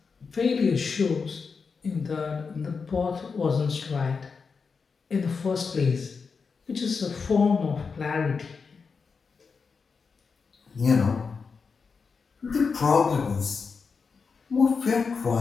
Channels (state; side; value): quieter; right; 5.2 dB